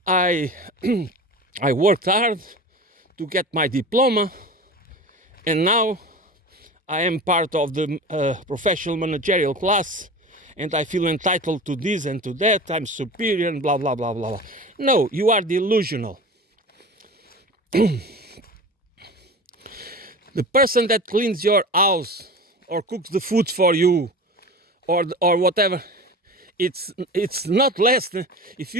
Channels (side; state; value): both; normal; correlation 0.33